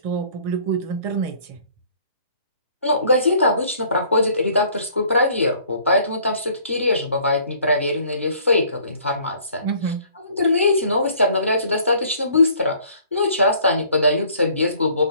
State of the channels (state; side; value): inverted; both; correlation -0.56